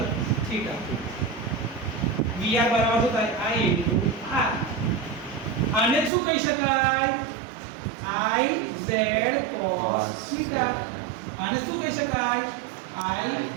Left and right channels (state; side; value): drops out; left; at 6.1 s